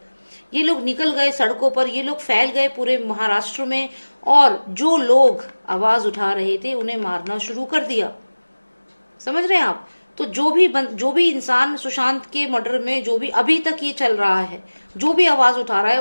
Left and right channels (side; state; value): both; inverted; correlation -1.00